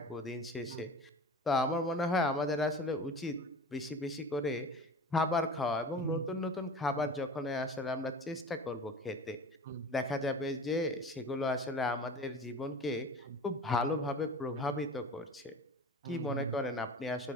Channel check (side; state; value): both; normal; correlation 0.37